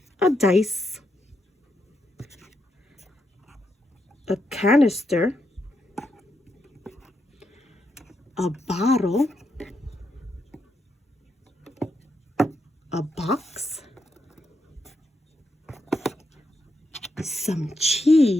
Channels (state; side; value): normal; both; correlation 0.82